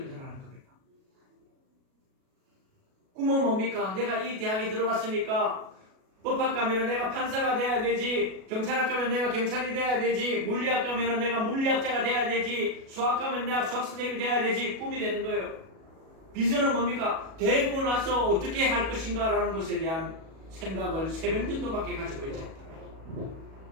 겁니다. 꿈은 뭡니까? 내가 이 대학에 들어왔으니까 법학 가면은 내가 판사가 돼야 되지, 경찰학 가면 내가 경찰이 돼야 되지, 물리학 가면은 내가 물리학자가 돼야 되지, 수학 가면 내가 수학 선생님이 돼야 되지, 꿈이 되는 거예요. 비전은 뭡니까? 되고 나서 어떻게 할 것인가 라는 것에 대한 생각을 3명 정도밖에 가지고 있지 않다.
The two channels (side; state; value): left; late; 37 ms